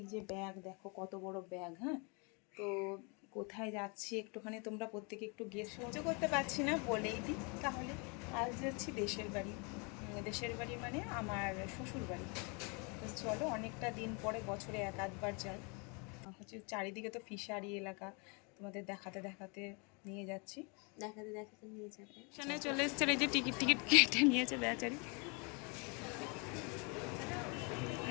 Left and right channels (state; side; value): quieter; right; 32.8 dB